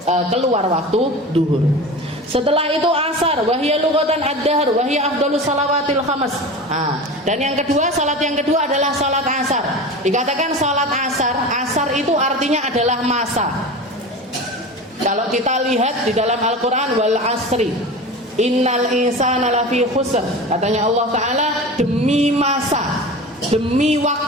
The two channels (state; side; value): normal; both; correlation 0.31